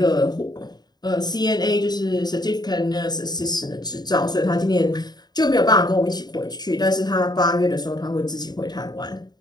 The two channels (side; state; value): right; late; 0.20 ms